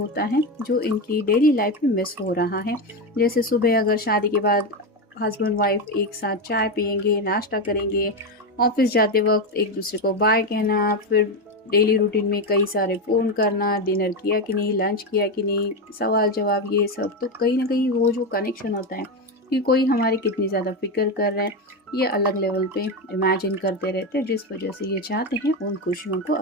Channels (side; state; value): both; normal; correlation 0.13